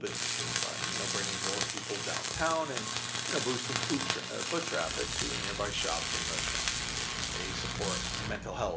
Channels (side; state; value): both; identical; correlation 1.00